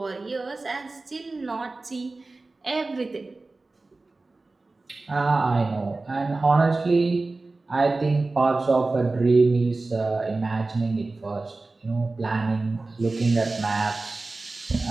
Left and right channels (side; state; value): left; quieter; 3.4 dB